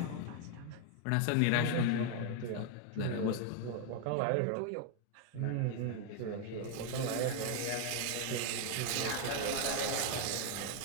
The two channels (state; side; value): different; both; correlation 0.00